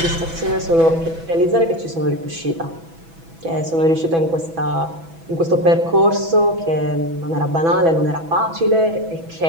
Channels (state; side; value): late; left; 6.1 ms